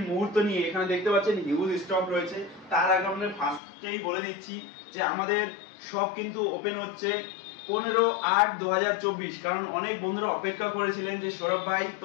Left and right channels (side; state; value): right; drops out; at 3.6 s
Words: মুহূর্ত নিয়ে। এখানে দেখতে পাচ্ছেন হিউজ স্টক রয়েছে। তার আগে আমরা ফার্স্টেই বলে দিচ্ছি যে আমাদের শপ কিন্তু ওপেন হচ্ছে 15/8/2024। কারণ অনেক বন্ধুরা অপেক্ষা করেছিলেন যে সৌরভ ভাই